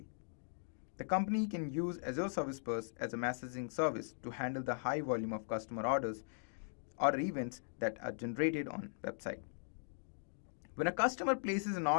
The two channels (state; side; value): silent; right; digital silence